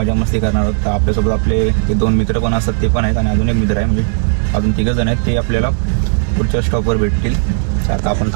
मस्ती करणार आहोत. तर आपल्यासोबत आपले ते 2 मित्र पण असतात, ते पण आहेत आणि अजून एक मित्र आहे, म्हणजे अजून 3 जण आहेत. ते आपल्याला पुढच्या स्टॉपवर भेटतील. तर आता आपण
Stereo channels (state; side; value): silent; left; digital silence